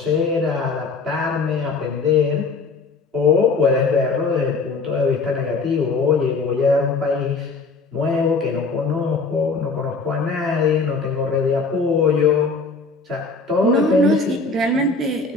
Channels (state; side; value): quieter; right; 4.0 dB